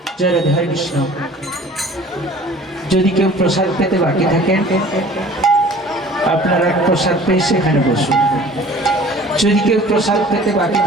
জয় রাধে, হরে কৃষ্ণ। যদি কেউ প্রসাদ পেতে বাকি থাকেন, আপনারা প্রসাদ পেয়ে সেখানে বসুন। যদি কেউ প্রসাদ পেতে বাকি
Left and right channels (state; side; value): normal; both; correlation 0.47